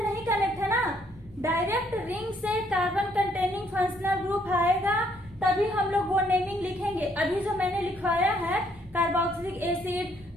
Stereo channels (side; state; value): both; normal; correlation 0.68